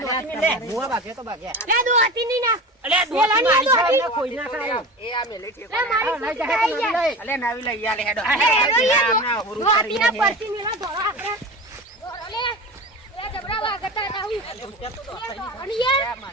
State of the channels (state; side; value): normal; both; correlation 0.30